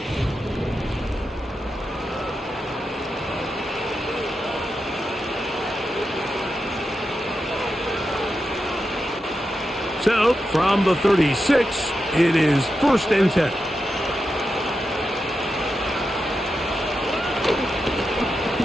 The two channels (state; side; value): normal; both; correlation 0.88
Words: So, from the 36, it is 1st and 10.